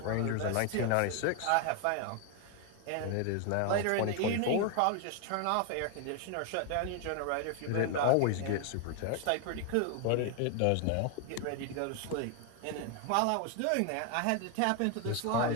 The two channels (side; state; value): both; different; correlation 0.01